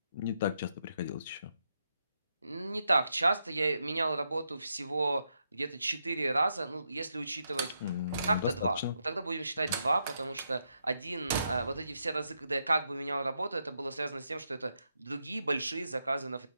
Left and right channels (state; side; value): inverted; both; correlation -0.82